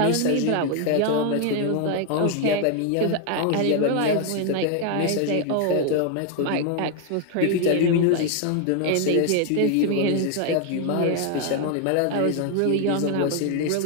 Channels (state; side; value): different; both; correlation 0.00